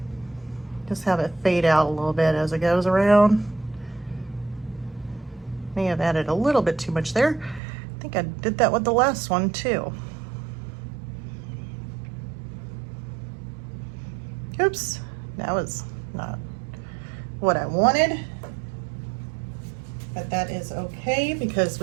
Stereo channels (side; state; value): left; drops out; at 7.6 s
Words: Just have it fade out a little bit as it goes around. May have added a little bit too much there. I think I did that with the last one too. Oops, that was not what I wanted. But that is okay because